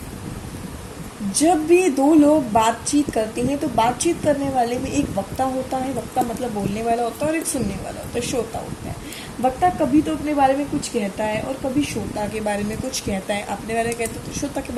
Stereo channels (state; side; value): identical; both; correlation 1.00